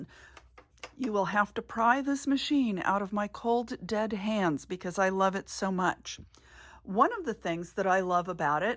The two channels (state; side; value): identical; both; correlation 1.00